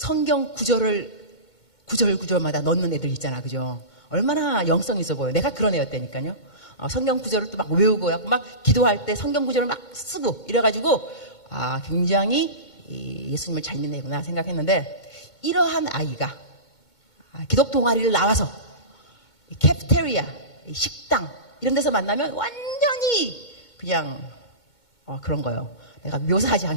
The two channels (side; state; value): right; late; 2.2 ms